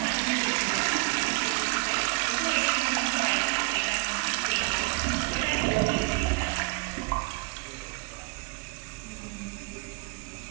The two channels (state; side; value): quieter; left; 27.9 dB